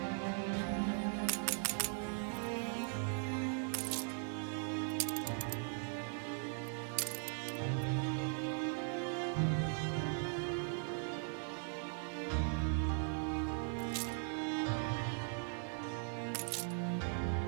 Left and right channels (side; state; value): left; silent; 51 dB below the other